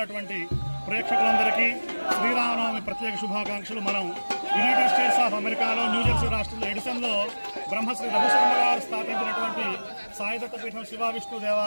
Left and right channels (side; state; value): both; inverted; correlation -1.00